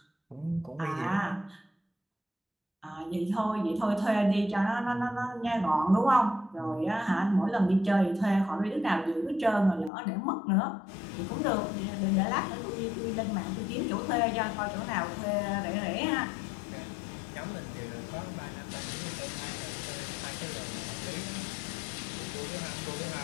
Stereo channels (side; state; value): right; drops out; at 9.9 s